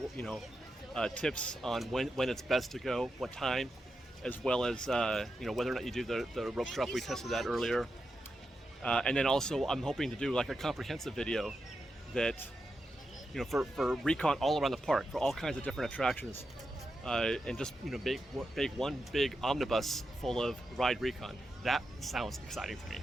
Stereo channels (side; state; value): both; normal; correlation 0.88